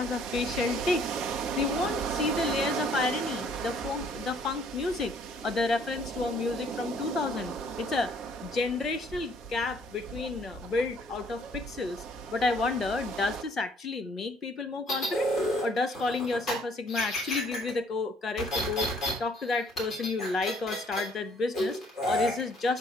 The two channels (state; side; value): normal; both; correlation 0.61